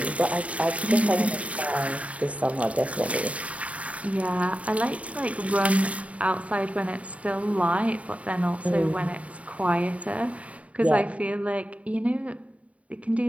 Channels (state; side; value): late; left; 0.066 ms